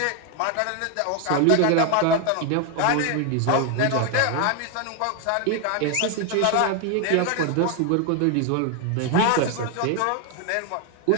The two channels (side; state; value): both; different; correlation 0.01